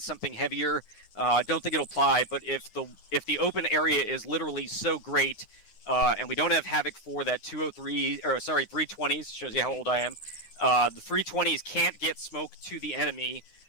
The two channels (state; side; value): late; right; 9.7 ms